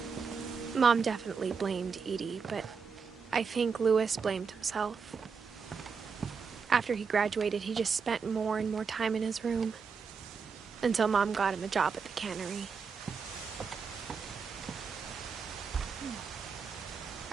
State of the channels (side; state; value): left; quieter; 5.6 dB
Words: Mom definitely blamed Edie, but I think Louis blamed himself. After he graduated, he just spent more and more time in his room, until Mom got him a job at the cannery.